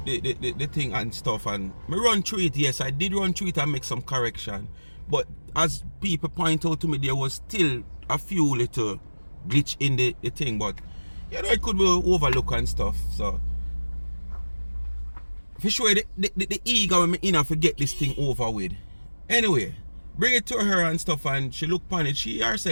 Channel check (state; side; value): inverted; both; correlation -1.00